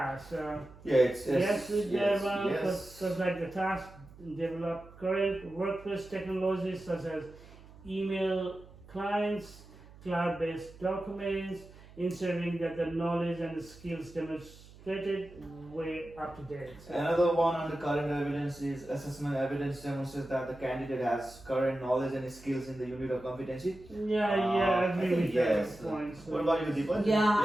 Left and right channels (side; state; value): right; noise; hum, 21 dB below the sound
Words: Yeah, it's Yes, with that one, yes. because like the task develop current workplace technologies such as email clients, cloud-based documents, ensuring that the knowledge and the skills demonstrated were up to date. Another one on the current evidence is assessment evidence demonstrates that the candidate has current knowledge and skills in the unit of competency. Yeah, I I agree think with yes. that point. So. What about you, Deepa? Yeah,